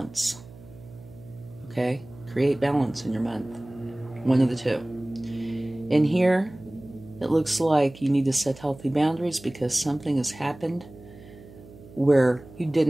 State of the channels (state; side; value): noise; right; hum, 20 dB below the sound